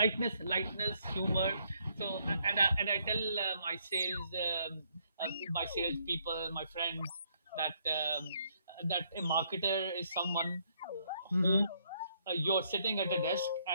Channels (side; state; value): both; inverted; correlation -0.71